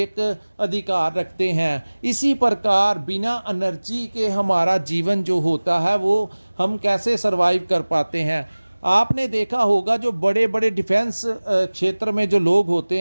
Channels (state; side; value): inverted; both; correlation -1.00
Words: अधिकार रखते हैं, इसी प्रकार बिना एनर्जी के हमारा जीवन जो होता है वो हम कैसे सरवाइव कर पाते हैं। आपने देखा होगा जो बड़े बड़े डिफेंस क्षेत्र में जो लोग होते